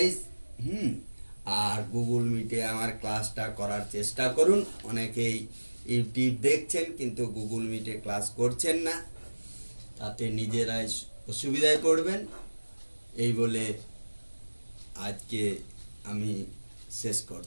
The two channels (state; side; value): inverted; both; correlation -1.00